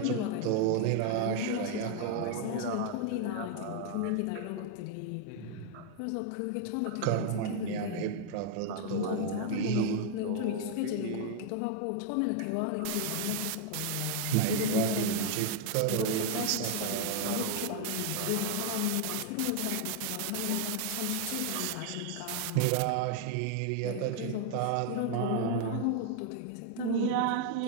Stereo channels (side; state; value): both; different; correlation 0.00